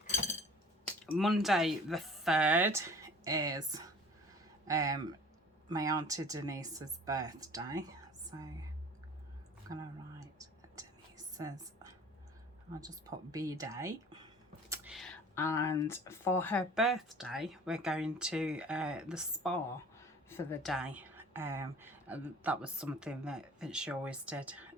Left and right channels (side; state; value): both; normal; correlation 0.46